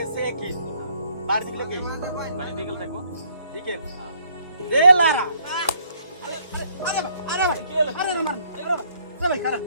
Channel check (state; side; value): inverted; both; correlation -0.66